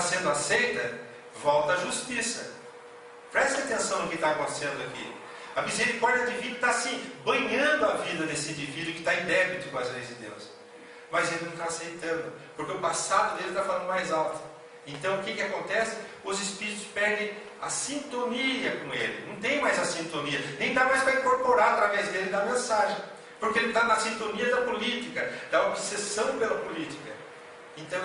sendo aceita, volta à justiça. Preste atenção no que está acontecendo aqui. A misericórdia divina está assim, banhando a vida desse indivíduo que está em débito com as leis de Deus. Mas ele não está aceitando, porque o passado dele está falando mais alto. Então o que acontece? Os espíritos perdem a sintonia com ele. Não tem mais a sintonia, nem dá mais para incorporar através dele da mensagem. Porque ele está na sintonia da política, da obsessão pela política. Então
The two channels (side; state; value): both; identical; correlation 1.00